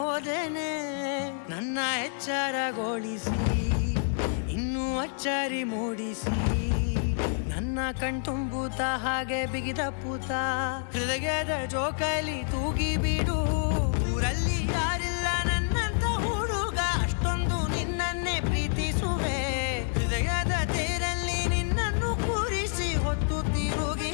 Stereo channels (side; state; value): right; silent; 59 dB below the other